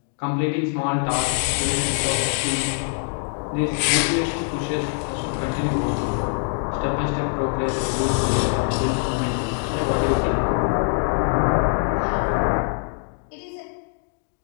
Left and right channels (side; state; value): right; silent; 63 dB below the other